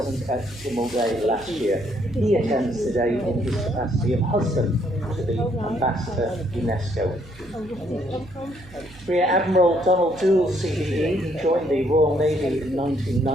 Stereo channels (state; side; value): noise; right; hum, 21 dB below the sound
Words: at Tynwald Day last year. He attends today in his capacity of husband to the Ambassador UNESCO. Rear Admiral Donald Doole, CBE, he joined the Royal Navy in